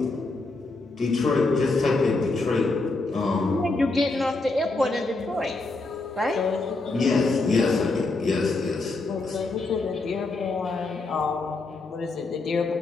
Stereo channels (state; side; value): quieter; right; 3.4 dB